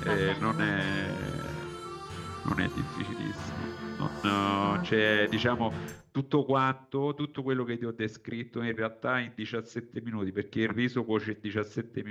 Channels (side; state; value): both; identical; correlation 1.00